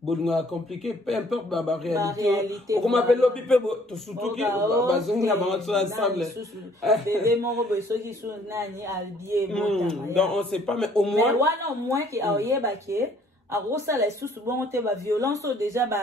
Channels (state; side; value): normal; both; correlation 0.60